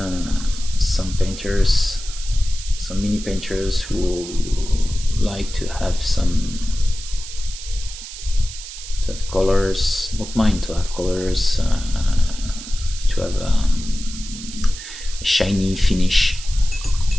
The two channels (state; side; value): noise; right; hiss, 12 dB below the sound